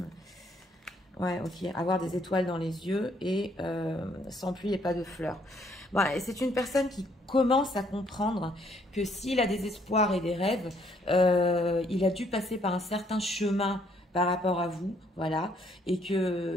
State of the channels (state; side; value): normal; both; correlation 0.67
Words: Ouais, ok. Avoir des étoiles dans les yeux et sans pluie et pas de fleurs. Bon, c'est une personne qui commence à comprendre que s'il a des espoirs et des rêves, il a dû passer par un certain chemin par rapport à vous, voilà, et